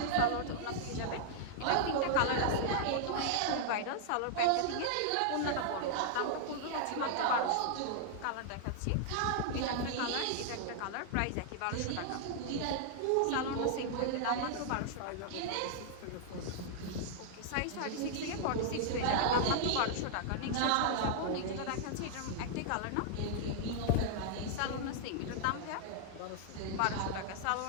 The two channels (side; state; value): both; different; correlation -0.01